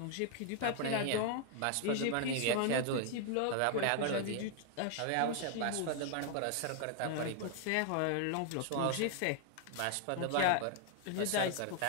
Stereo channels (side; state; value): both; different; correlation 0.00